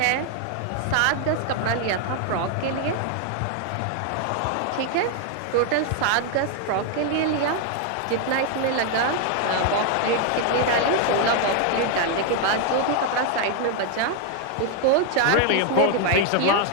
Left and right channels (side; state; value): both; different; correlation 0.00